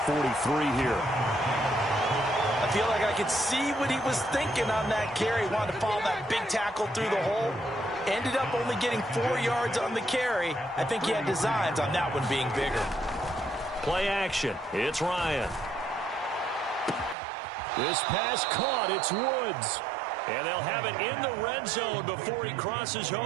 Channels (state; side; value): drops out; left; at 17.2 s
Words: here. I feel like I could see what he was thinking on that carry. He wanted to follow that big tackle through the hole. Ended up only getting 4 yards on the carry. I think he had designs on that one being bigger. Play action. It's Ryan. This pass caught. It's Woods. And they'll have it in the red zone before he crosses